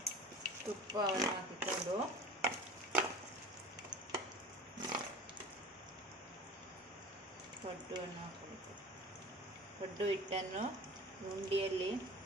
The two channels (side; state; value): both; normal; correlation 0.40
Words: ತುಪ್ಪವನ್ನು ಹಾಕಿಕೊಂಡು ಪಡ್ಡುವನ್ನು ಹಾಕಬೇಕು. ಪಡ್ಡು ಹಿಟ್ಟನ್ನು ಉಂಡೆಯಲ್ಲಿ